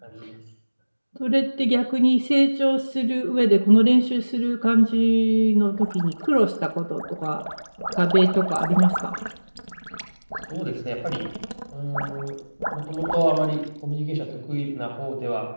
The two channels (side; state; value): both; inverted; correlation -1.00